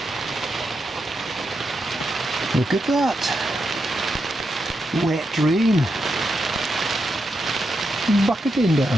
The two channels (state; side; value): normal; both; correlation 0.85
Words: Look at that. Wet rain. Bucketing